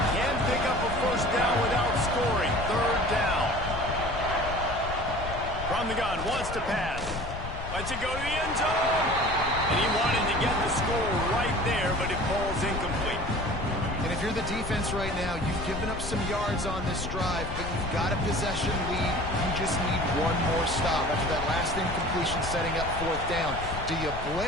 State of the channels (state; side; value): noise; left; rumble, 8 dB below the sound